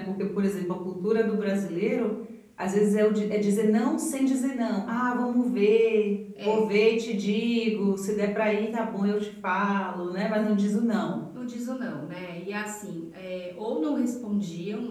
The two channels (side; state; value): both; identical; correlation 1.00